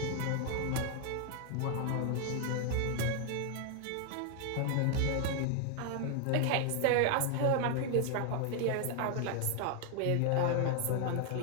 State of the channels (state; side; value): different; both; correlation 0.00